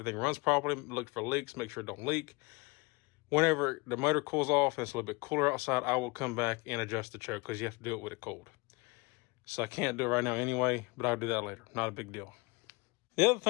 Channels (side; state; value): right; quieter; 26.1 dB